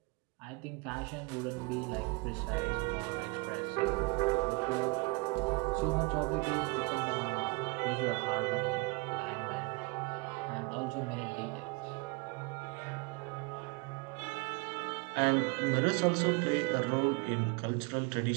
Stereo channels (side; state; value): left; quieter; 29.0 dB